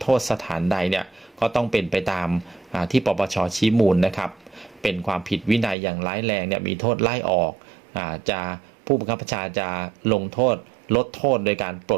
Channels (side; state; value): left; drops out; at 5.8 s